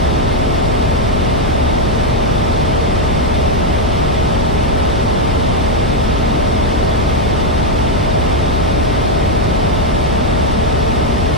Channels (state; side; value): noise; left; hum, 5 dB below the sound